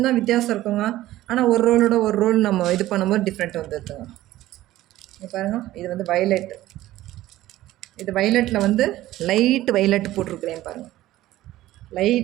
தான் வித்தியாசம் இருக்குங்க. ஆனால் ஒரு ரோலோட ஒரு ரோல் நம்ம இது பண்ணும்போது டிஃப்ரெண்ட் வந்துடுதுங்க. இது பாருங்கள், இது வந்து வயலட். இது வயலட்டில் வந்து லைட்டு வயலட் போட்டிருக்கிறேன் பாருங்கள்,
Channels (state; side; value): quieter; left; 15.4 dB